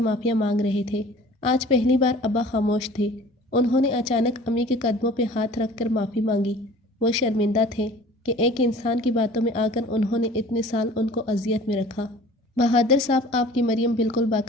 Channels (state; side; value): normal; both; correlation 0.46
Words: معافیاں مانگ رہے تھے۔ آج پہلی بار ابا خاموش تھے۔ انہوں نے اچانک امی کے قدموں پہ ہاتھ رکھ کر معافی مانگی۔ وہ شرمندہ تھے کہ ایک انسان کی باتوں میں آ کر انہوں نے اتنے سال ان کو اذیت میں رکھا۔ بہادر صاحب، آپ کی مریم بالکل